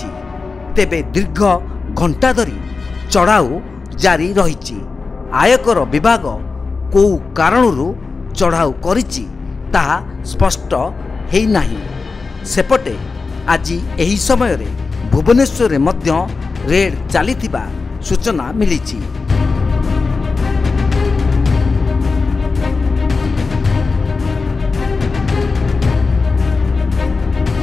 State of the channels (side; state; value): right; quieter; 4.3 dB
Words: ତେବେ ଦୀର୍ଘ ଘଣ୍ଟା ଧରି ଚଢ଼ାଉ ଜାରି ରହିଛି। ଆୟକର ବିଭାଗ କେଉଁ କାରଣରୁ ଚଢ଼ାଉ କରିଛି ତାହା ସ୍ପଷ୍ଟ ହୋଇନାହିଁ। ସେପଟେ ଆଜି ଏହି ସମୟରେ ଭୁବନେଶ୍ୱରରେ ମଧ୍ୟ ରେଡ୍ ଚାଲିଥିବା ସୂଚନା ମିଳିଛି।